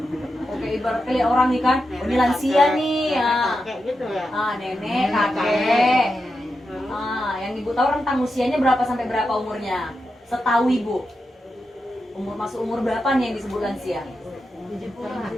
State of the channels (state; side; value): normal; both; correlation 0.88